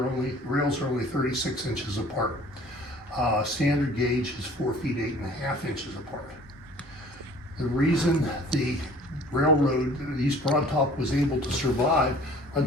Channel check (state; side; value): normal; both; correlation 0.50